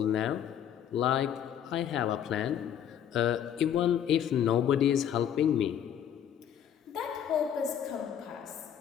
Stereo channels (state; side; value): quieter; right; 9.4 dB